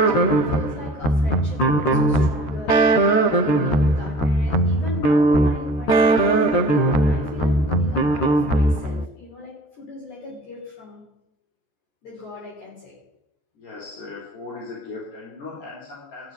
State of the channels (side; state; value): right; late; 14 ms